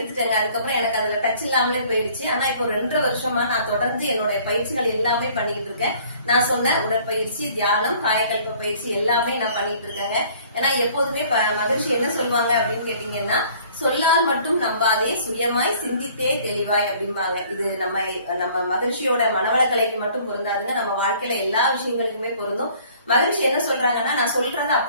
அதுக்கப்புறம் எனக்கு அதுல டச் இல்லாமலே போயிடுச்சு. ஆனா இப்போ 2.5 வருஷமா நான் தொடர்ந்து என்னுடைய பயிற்சிகள் எல்லாமே பண்ணிட்டு இருக்கேன். நான் சொன்ன உடற்பயிற்சி, தியானம், காயக்கல்ப பயிற்சி எல்லாமே நான் பண்ணிட்டு இருக்கேங்க. ஏன்னா எப்போதுமே மகிழ்ச்சி என்ன சொல்லுவாங்க அப்படின்னு கேட்டீங்கன்னா, சொல்லால் மட்டும் நம்பாதே, சுயமாய் சிந்தித்தே தெளிவாய் அப்படிம்பாங்க. இது நம்ம மகிழ்ச்சியோட மனவளக்கலைக்கு மட்டும் பொருந்தாதுங்க, நம்ம வாழ்க்கையில எல்லா விஷயங்களுக்குமே பொருந்தும். மகிழ்ச்சி என்ன சொல்றாங்கன்னா, நான் சொல்றத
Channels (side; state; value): both; inverted; correlation -0.55